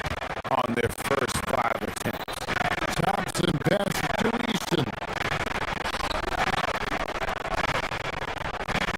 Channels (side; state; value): both; identical; correlation 1.00